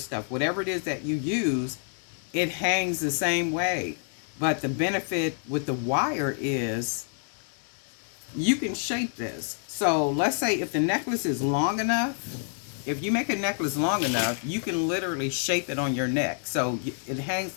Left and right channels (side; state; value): right; silent; 58 dB below the other